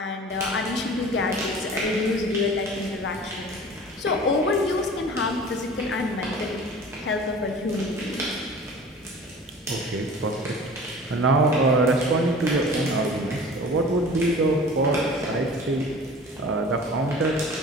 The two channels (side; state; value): both; normal; correlation 0.42